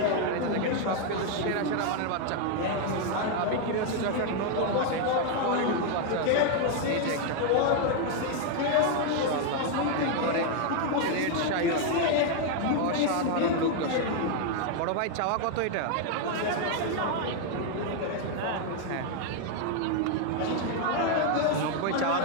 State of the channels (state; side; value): different; both; correlation 0.00